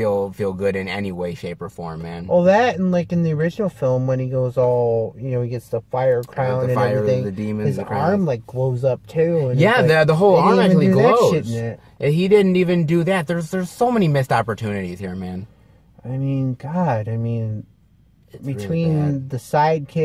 good in any way, shape, or form, man. Well, that and like in the original film when he goes all, he gets the fire crown and everything. The demons, his arm like glows up too. And yeah, the whole arm actually glows. Shit he didn't even do that. There's so many missed opportunities here, man. I mean, God, it's between really the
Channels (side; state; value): both; identical; correlation 1.00